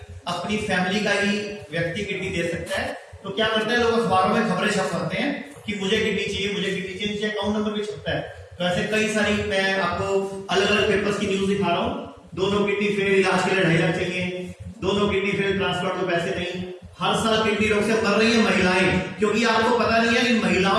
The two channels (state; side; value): identical; both; correlation 1.00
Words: अपनी फैमिली का ही व्यक्ति किडनी दे सकता है। तो क्या करते हैं लोग, अखबारों में खबरें छपवाते हैं कि मुझे किडनी चाहिए, मुझे किडनी चाहिए, नीचे अकाउंट नंबर भी छपता है। तो ऐसे कई सारी, मैं आपको अलग अलग पेपर्स की न्यूज दिखा रहा हूँ। दोनों किडनी फेल, इलाज के लिए 2.5 लाख चाहिए, दोनों किडनी फेल, ट्रांसप्लांट को पैसे नहीं। हर साल किडनी रोग से मर रही है महिलाएं, क्योंकि आपको पता नहीं है कि